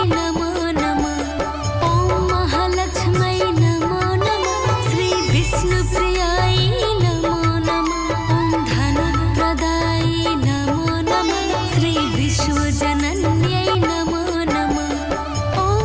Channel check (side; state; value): both; identical; correlation 1.00